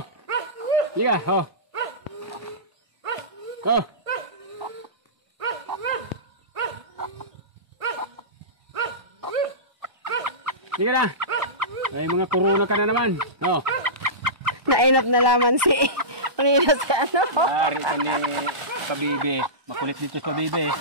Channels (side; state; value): left; late; 1.2 ms